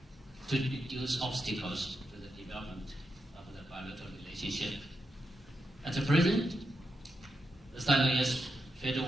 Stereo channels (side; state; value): both; normal; correlation 0.85